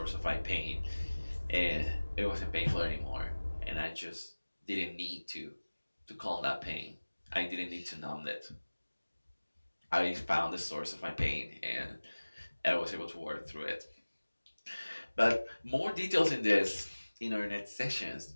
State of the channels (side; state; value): both; inverted; correlation -1.00